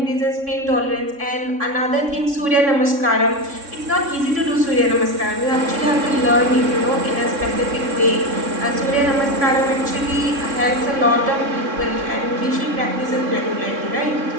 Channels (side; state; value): left; late; 3.6 ms